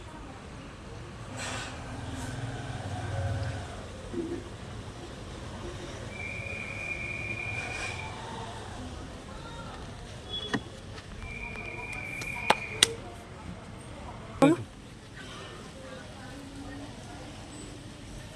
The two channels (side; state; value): both; identical; correlation 1.00